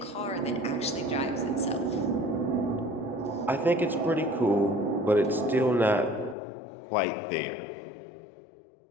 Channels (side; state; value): right; drops out; at 6.4 s